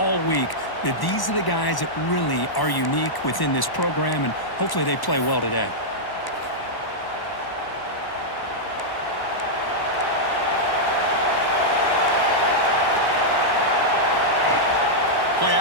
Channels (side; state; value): right; late; 1.0 ms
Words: week that these are the guys that really are unique within this program, and hopefully they play well today. Play